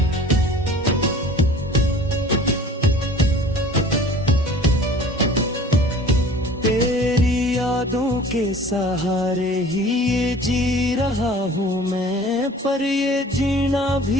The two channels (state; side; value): normal; both; correlation 0.46